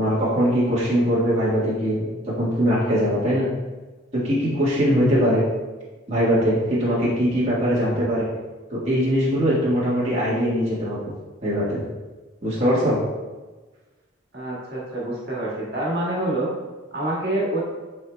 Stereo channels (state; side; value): normal; both; correlation 0.54